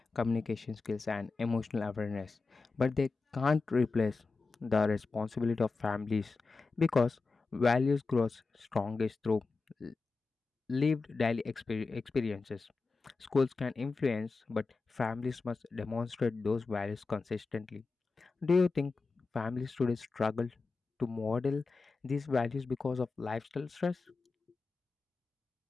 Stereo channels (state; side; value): quieter; right; 4.1 dB